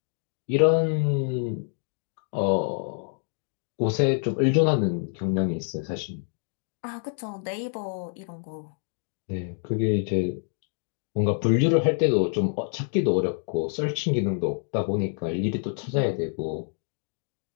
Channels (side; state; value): right; silent; 60 dB below the other